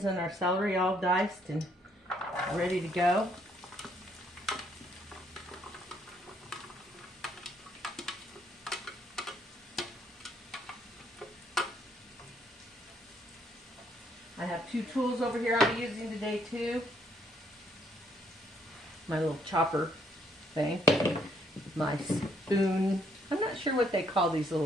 and our celery all diced and ready to go. I have two tools over here I'll be using today too. My little chopper thing. My spoon. I'm not sure what they call these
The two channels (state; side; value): normal; both; correlation 0.69